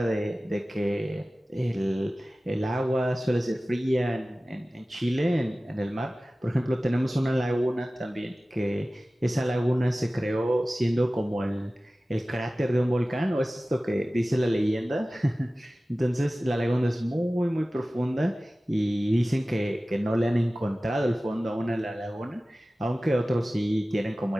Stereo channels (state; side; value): normal; both; correlation 0.97